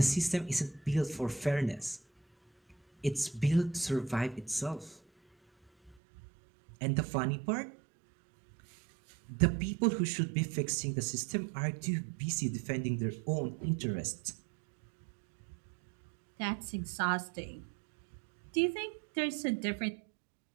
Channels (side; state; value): left; drops out; at 6.0 s